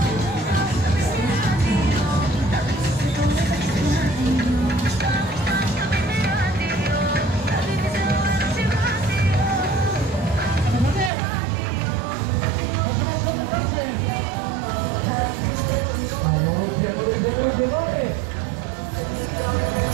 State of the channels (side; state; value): left; drops out; at 11.1 s